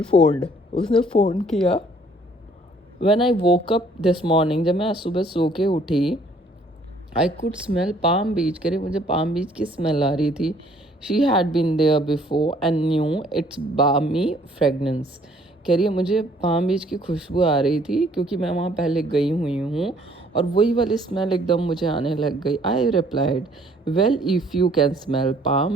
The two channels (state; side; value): normal; both; correlation 0.60